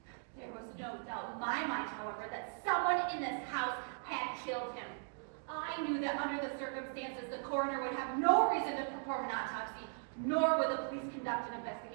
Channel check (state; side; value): silent; left; 52 dB below the other